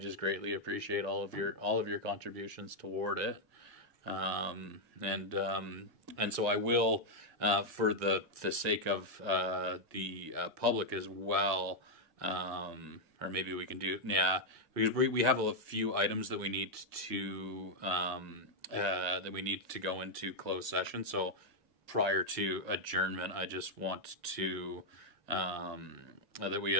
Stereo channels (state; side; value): normal; both; correlation -0.02